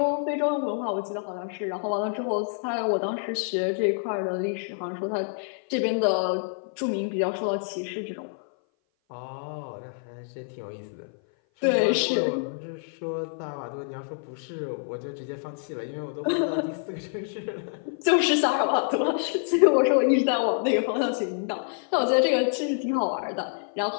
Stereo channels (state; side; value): silent; right; 57 dB below the other